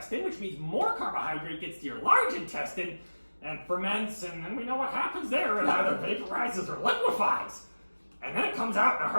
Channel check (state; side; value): inverted; both; correlation -1.00